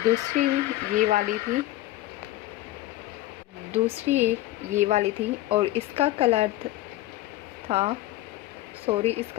दूसरी ये वाली थी, दूसरी ये वाली थी। और इसका कलर था, सॉरी,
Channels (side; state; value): right; quieter; 15.9 dB